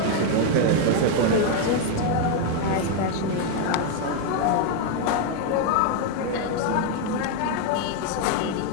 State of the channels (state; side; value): different; both; correlation 0.01